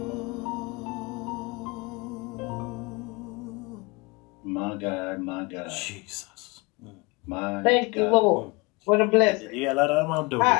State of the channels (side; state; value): right; quieter; 26.5 dB